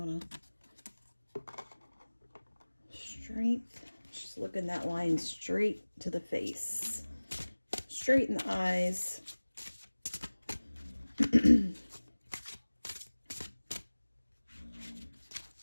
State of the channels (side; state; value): both; inverted; correlation -1.00